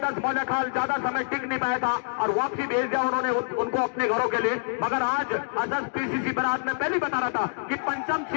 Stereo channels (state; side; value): silent; right; digital silence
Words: मौलाखाल ज्यादा समय टिक नहीं पाया था और वापसी भेज दिया उन्होंने उनको अपने घरों के लिए। मगर आज अजस पीसीसी बरात में पहले बता रहा था कि पंचम